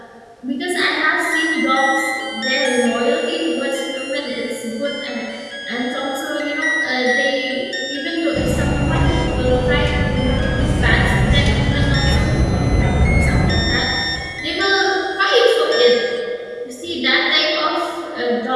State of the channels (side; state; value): both; identical; correlation 1.00